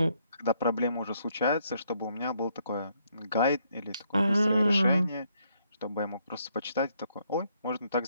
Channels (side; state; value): both; inverted; correlation -0.72